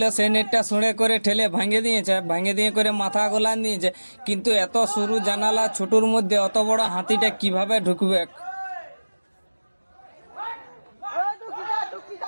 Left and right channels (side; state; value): both; inverted; correlation -1.00